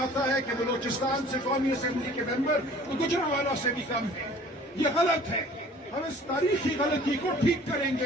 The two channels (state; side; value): normal; both; correlation 0.50